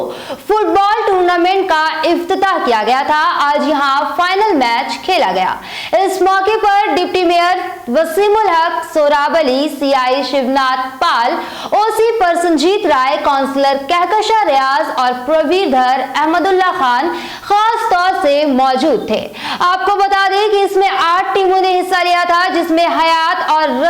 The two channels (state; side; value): identical; both; correlation 1.00